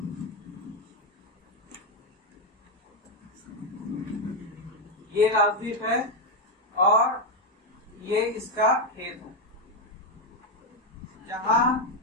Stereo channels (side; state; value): both; normal; correlation 0.05